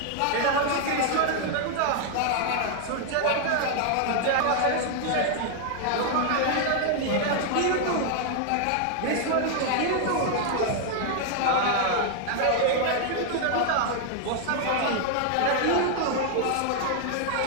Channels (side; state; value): both; different; correlation 0.00